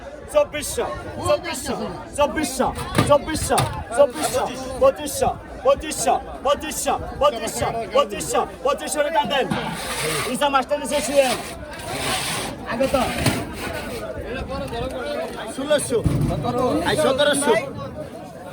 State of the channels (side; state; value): both; identical; correlation 1.00